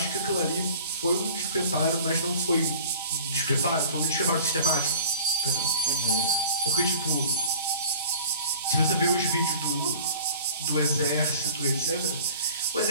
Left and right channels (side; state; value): both; inverted; correlation -0.45